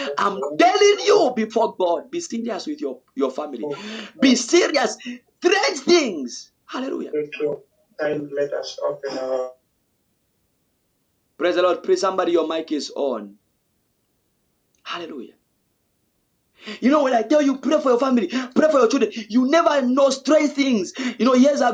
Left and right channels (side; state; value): both; identical; correlation 1.00